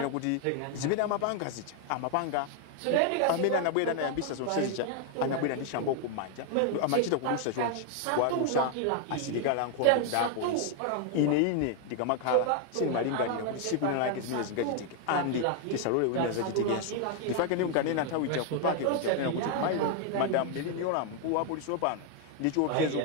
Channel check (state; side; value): different; both; correlation 0.00